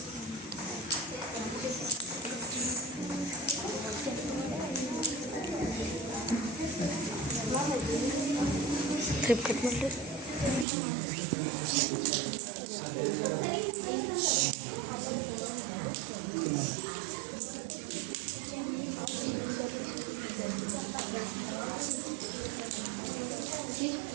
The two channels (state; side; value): drops out; left; at 10.7 s